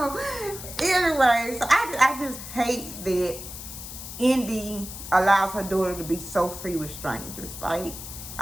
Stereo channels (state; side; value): noise; left; hiss, 11 dB below the sound